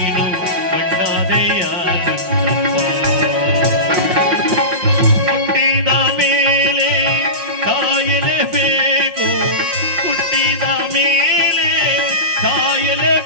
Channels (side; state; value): left; late; 5.6 ms